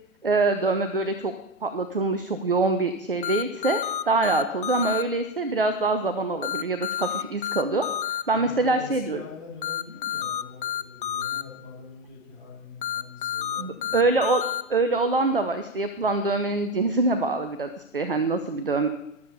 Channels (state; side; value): normal; both; correlation 0.16